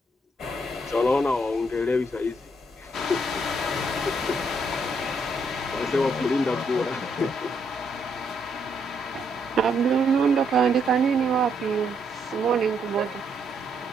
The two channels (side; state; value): both; normal; correlation 0.74